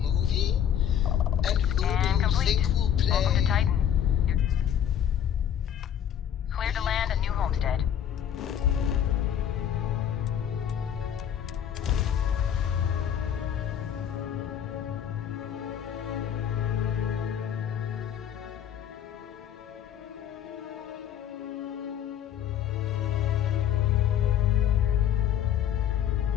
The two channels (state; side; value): quieter; right; 9.5 dB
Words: And who do you think will play? Welcome to Titan. You're cleared to land at New Homestead.